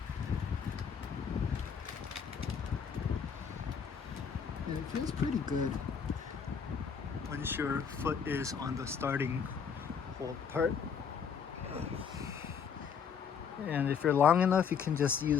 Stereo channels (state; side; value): quieter; right; 6.8 dB